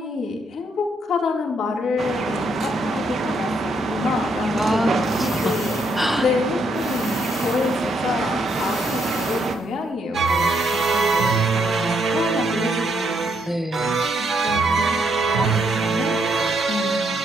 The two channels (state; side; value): normal; both; correlation 0.74